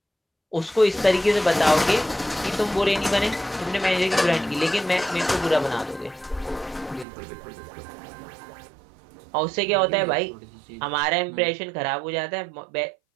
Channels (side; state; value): left; drops out; at 7.1 s